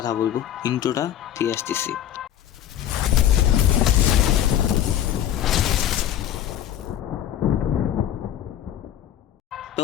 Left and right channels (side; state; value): right; quieter; 10.9 dB